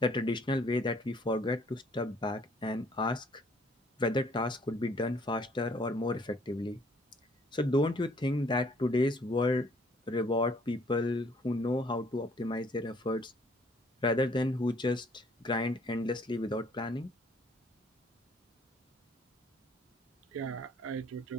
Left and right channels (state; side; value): normal; both; correlation 0.61